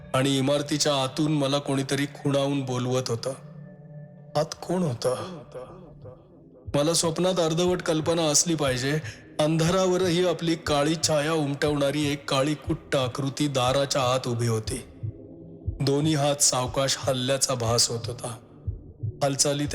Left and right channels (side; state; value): both; identical; correlation 1.00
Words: आणि इमारतीच्या आतून मला कोणीतरी खुणावून बोलवत होतं. आत कोण होतं? मला स्वप्नात अर्धवट कल्पना असली पाहिजे. अंधारावरही आपली काळी छाया उमटवणारी एक काळी कुट्ट आकृती दाराच्या आत उभी होती. दोन्ही हात सावकाश हल्ल्याचा भास होत होता. हालचालीत